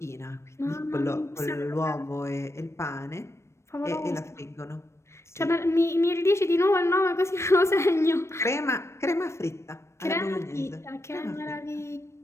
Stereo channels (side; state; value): right; late; 0.13 ms